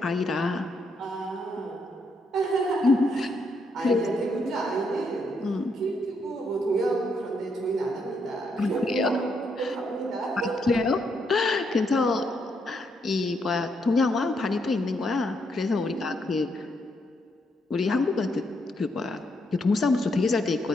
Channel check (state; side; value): normal; both; correlation 0.77